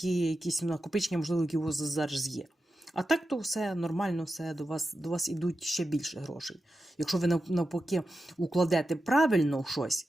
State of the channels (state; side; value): normal; both; correlation 0.90